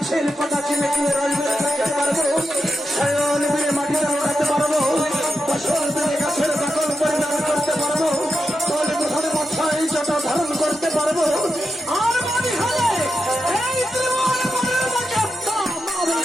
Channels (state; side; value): normal; both; correlation 0.88